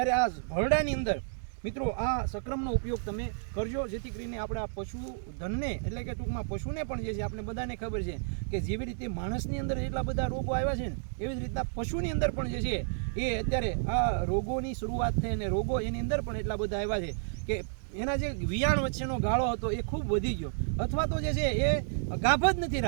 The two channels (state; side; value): silent; left; digital silence